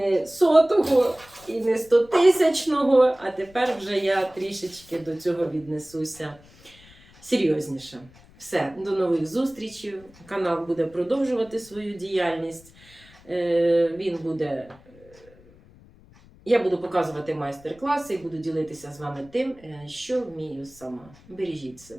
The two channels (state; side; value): noise; left; rumble, 25 dB below the sound